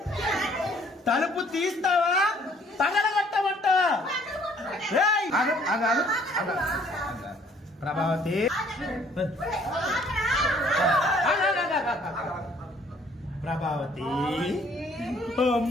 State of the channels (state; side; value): normal; both; correlation 0.60